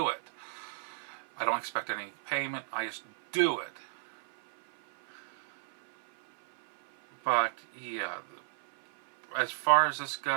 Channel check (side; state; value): left; silent; 56 dB below the other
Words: it. I don't expect any payment. I just do it. But yeah, as far as this